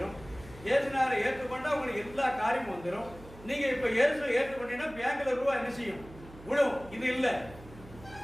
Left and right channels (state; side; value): noise; right; hum, 18 dB below the sound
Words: இயேசுநாரை ஏற்றுக்கொண்டா உங்களுக்கு எல்லா காரியமும் வந்துடும். நீங்க இப்ப இயேசுவை ஏற்றுக்கொண்டீங்கன்னா பேங்க்ல ரூபா என்ன செய்யும்? விடும். இது இல்லை.